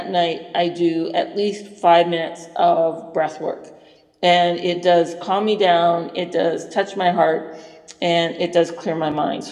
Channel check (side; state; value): both; identical; correlation 1.00